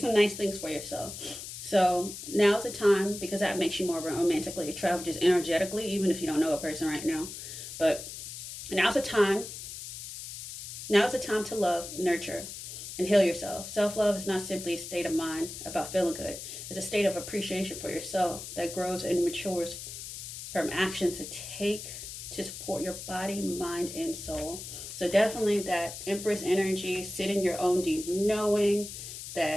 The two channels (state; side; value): noise; left; hiss, 10 dB below the sound